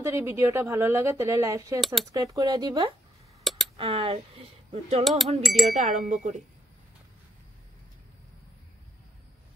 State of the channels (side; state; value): both; normal; correlation 0.76